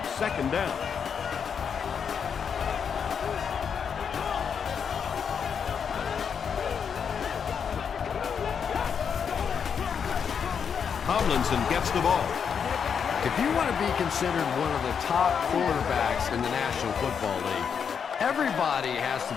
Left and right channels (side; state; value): right; quieter; 7.0 dB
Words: 2nd down. Tomlinson gets the ball. If you want to be considered one of the top quarterbacks in the National Football League, everybody has to